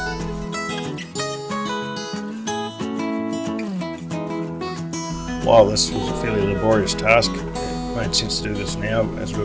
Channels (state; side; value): identical; both; correlation 1.00